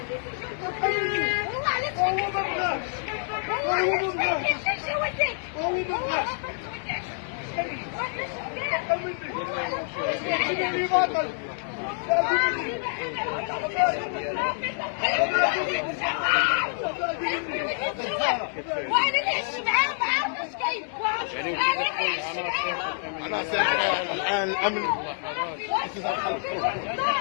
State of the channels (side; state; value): right; silent; 60 dB below the other